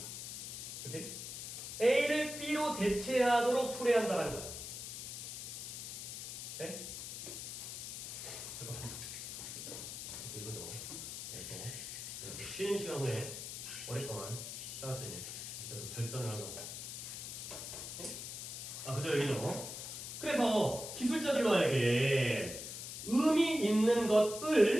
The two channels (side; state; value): left; noise; hiss, 7 dB below the sound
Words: 오케이? A를 B로 대체하도록 초래한다는 거야. 네? 잠깐만. 이거죠. 이거. 쉬는 시간 후에 오랫동안 펴놨더니 진짜 절전을 하려고. 네? 아, 그죠, 여기죠. 그래서 기술자들로에게 의미 있는